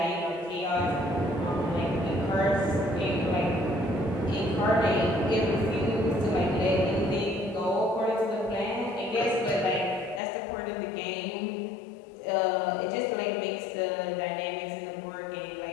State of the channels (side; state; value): right; drops out; at 10.2 s